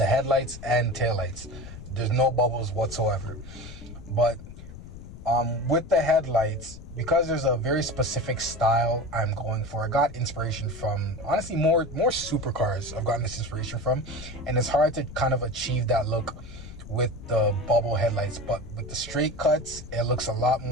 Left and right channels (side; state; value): left; noise; rumble, 14 dB below the sound